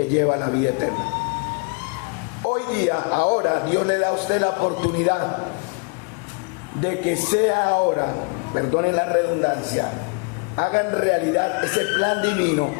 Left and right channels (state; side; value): quieter; right; 33.6 dB